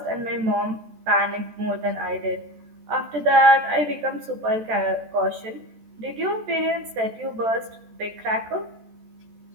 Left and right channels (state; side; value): late; left; 14 ms